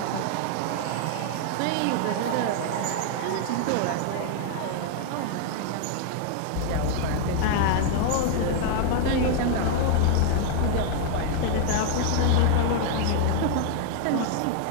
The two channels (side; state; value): both; different; correlation 0.00